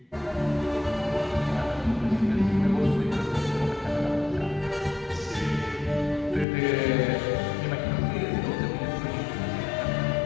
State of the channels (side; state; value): right; drops out; at 6.5 s